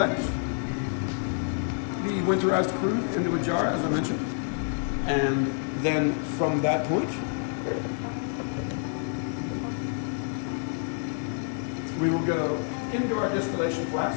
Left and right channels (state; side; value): silent; right; 59 dB below the other